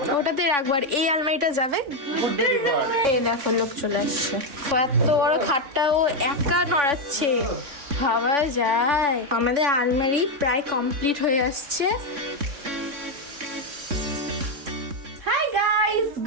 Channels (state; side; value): late; left; 3.4 ms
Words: না, ওটাতে রাখবো। আর এই আলমারিটা যাবে, এই দেখো লোক চলে আসছে। এত বড় খাটটাও একা নড়াচ্ছে, ভাবা যায়। আমাদের আলমারি প্রায় কমপ্লিট হয়ে আসছে। Hi guys,